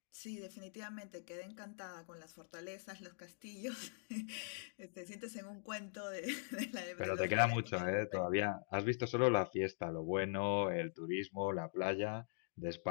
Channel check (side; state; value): right; silent; digital silence